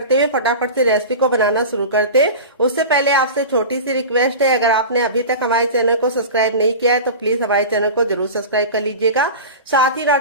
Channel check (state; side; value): inverted; both; correlation -0.31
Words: हुए फटाफट से रेसिपी को बनाना शुरू करते हैं। उससे पहले आपसे छोटी सी रिक्वेस्ट है, अगर आपने अभी तक हमारे चैनल को सब्सक्राइब नहीं किया है तो प्लीज हमारे चैनल को जरूर सब्सक्राइब कर लीजिएगा। साथ ही